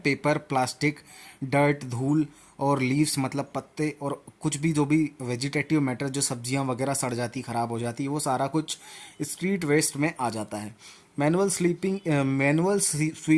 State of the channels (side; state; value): both; identical; correlation 1.00